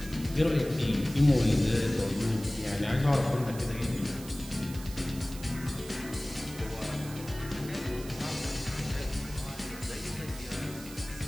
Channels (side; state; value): right; noise; hiss, 15 dB below the sound